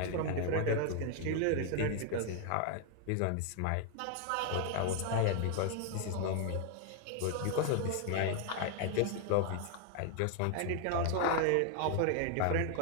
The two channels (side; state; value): both; different; correlation 0.00